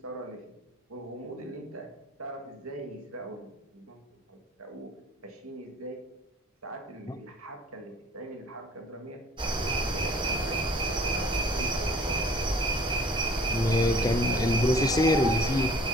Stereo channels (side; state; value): both; normal; correlation 0.52